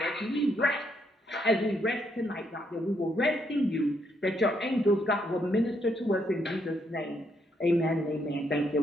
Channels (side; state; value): both; normal; correlation 0.75